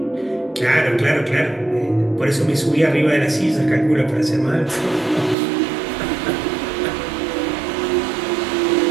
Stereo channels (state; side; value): drops out; left; at 5.4 s